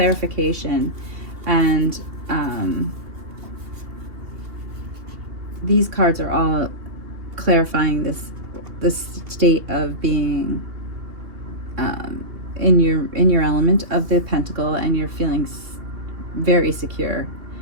and these cards are all clarifying this state of being in your element of the Pentacle, and you're feeling very secure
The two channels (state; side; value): late; left; 2.8 ms